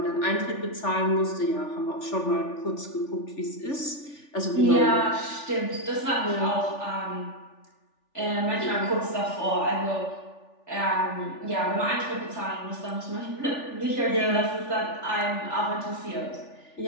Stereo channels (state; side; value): late; right; 3.4 ms